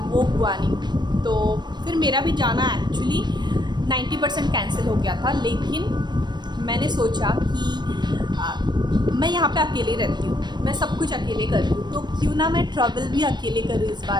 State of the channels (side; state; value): left; late; 0.21 ms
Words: वो हुआ नहीं। तो फिर मेरा भी जाना एक्चुअली 90% कैंसिल हो गया था। लेकिन मैंने सोचा कि मैं यहाँ पे अकेले रहती हूँ, मैं सब कुछ अकेले करती हूँ, तो क्यों ना मैं ट्रैवल भी अकेले करूँ इस